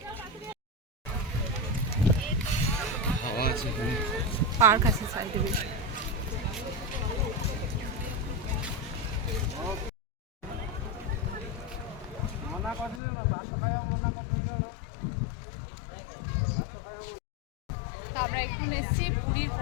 পার্ক আছে সাইডে বেশ। তো আমরা এখন এসেছি পুরীর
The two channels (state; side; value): drops out; right; at 13.0 s